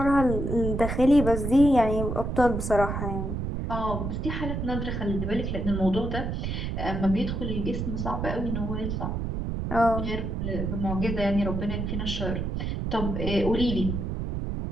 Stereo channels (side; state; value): right; noise; rumble, 3 dB below the sound